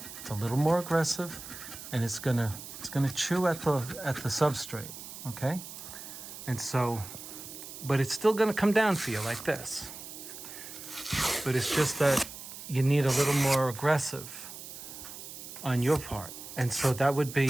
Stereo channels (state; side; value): noise; right; hiss, 12 dB below the sound